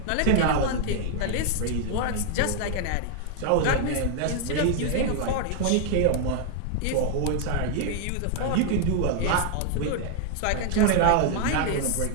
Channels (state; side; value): different; both; correlation 0.00